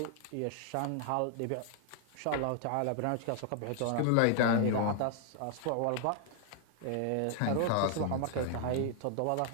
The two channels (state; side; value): different; both; correlation 0.00